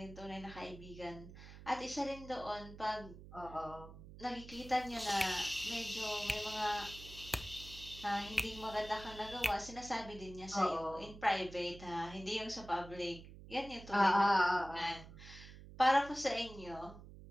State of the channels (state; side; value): noise; right; hum, 16 dB below the sound